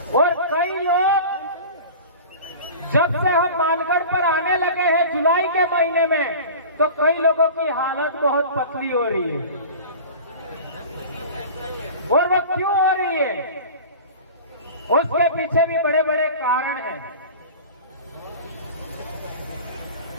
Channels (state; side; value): inverted; both; correlation -0.37